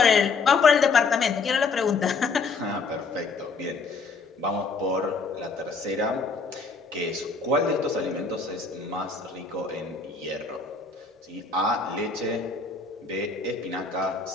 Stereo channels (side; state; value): right; quieter; 4.4 dB